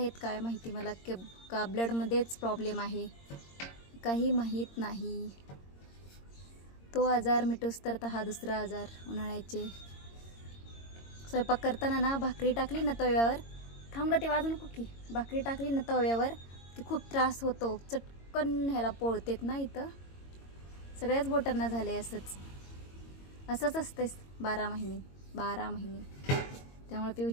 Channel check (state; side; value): late; right; 22 ms